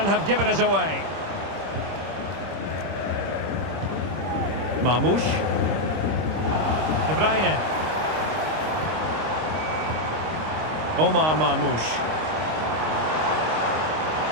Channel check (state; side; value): late; left; 26 ms